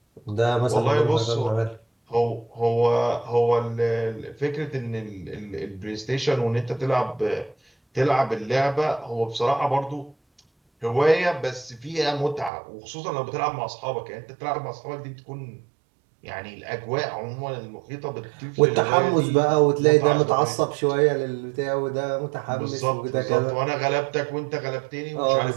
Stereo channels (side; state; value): left; drops out; at 12.5 s